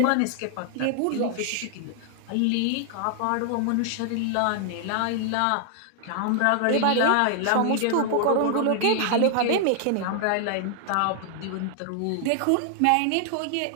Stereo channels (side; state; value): both; different; correlation 0.00